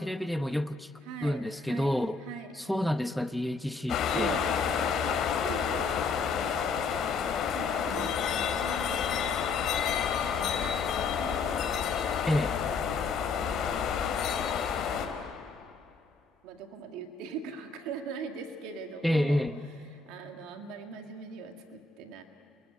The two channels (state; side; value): quieter; right; 4.2 dB